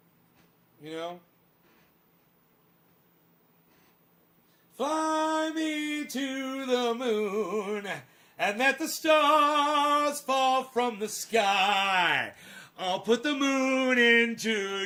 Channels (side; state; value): both; identical; correlation 1.00